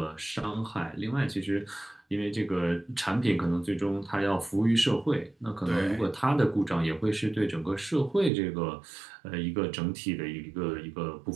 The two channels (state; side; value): drops out; left; at 8.3 s